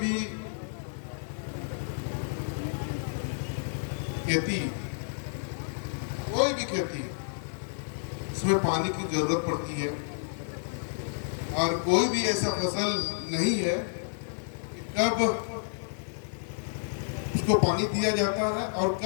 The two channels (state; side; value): silent; right; 58 dB below the other